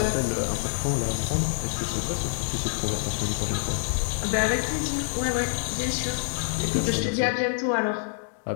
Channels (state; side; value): silent; right; 56 dB below the other